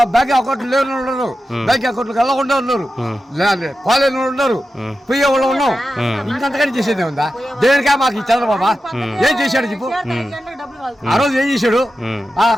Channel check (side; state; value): both; normal; correlation 0.91